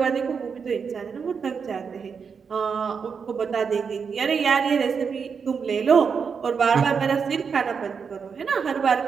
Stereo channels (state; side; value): quieter; left; 6.0 dB